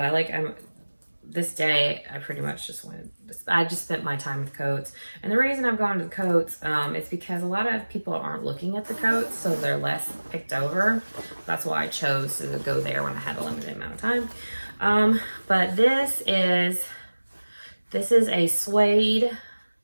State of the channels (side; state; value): both; inverted; correlation -1.00